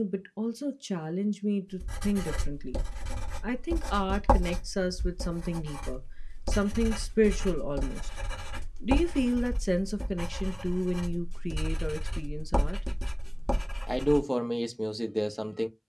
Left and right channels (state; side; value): identical; both; correlation 1.00